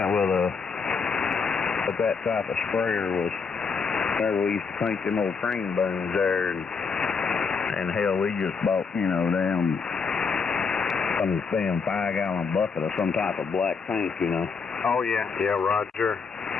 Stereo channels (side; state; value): right; quieter; 5.3 dB